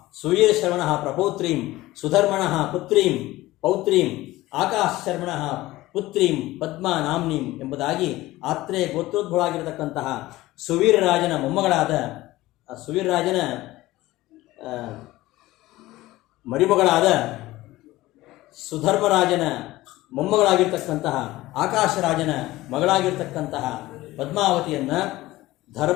ಸುವೀರ ಶರವಣ ಪ್ರಪೌತ್ರೀಂ ಸುಧರ್ಮಣ ಪೌತ್ರೀಂ ಆಕಾಶ ಶರ್ಮಣ ಪುತ್ರೀಂ ಪದ್ಮಾ ನಾಮ್ನೀಂ ಎಂಬುದಾಗಿ ಆತ್ರೇ ಗೋತ್ರೋದ್ಭವವಾಗಿರತಕ್ಕಂತಹ ಸುವೀರರಾಜನ ಮೊಮ್ಮಗಳಾದ ಸುವೀರರಾಜನ ಮರಿಮಗಳಾದ ಸುಧರ್ಮರಾಜನ ಮೊಮ್ಮಗಳಾಗಿರ್ತಕ್ಕಂತಹ ಆಕಾಶರಾಜನ ಮಗಳಾಗಿರ್ತಕ್ಕಂತಹ ಪದ್ಮಾವತಿಯನ್ನು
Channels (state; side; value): quieter; right; 17.7 dB